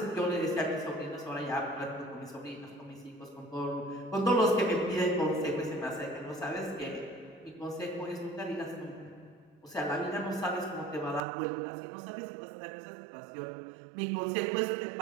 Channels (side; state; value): left; drops out; at 11.2 s